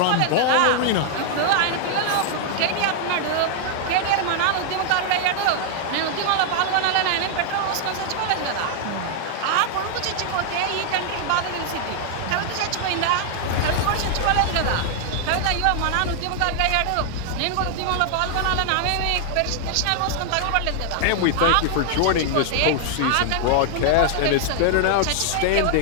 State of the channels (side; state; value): both; different; correlation 0.00